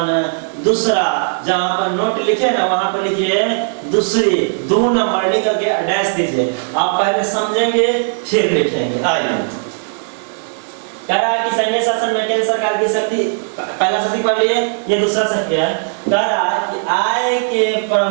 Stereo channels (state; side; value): silent; left; digital silence